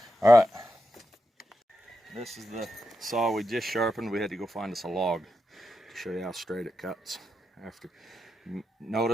All right. This is the saw we just sharpened. We had to go find us a log to show you how straight it cuts. After,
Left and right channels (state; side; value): normal; both; correlation 0.86